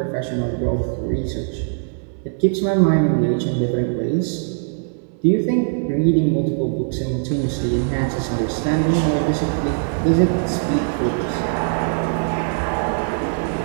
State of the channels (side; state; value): left; silent; digital silence